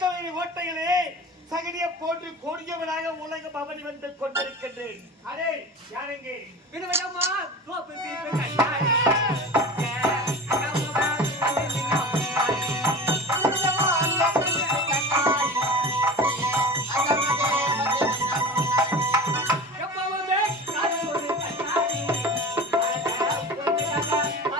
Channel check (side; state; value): both; normal; correlation 0.33